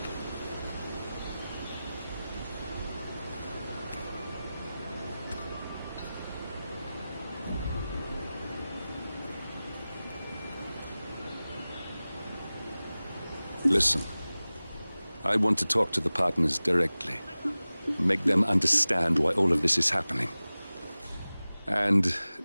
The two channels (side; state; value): both; inverted; correlation -0.97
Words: Listen, I want to talk to the partners directly. Make them understand why all of this is happening. And